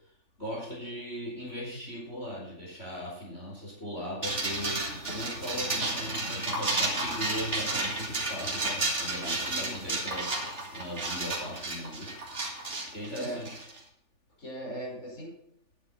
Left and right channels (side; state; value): right; late; 3.4 ms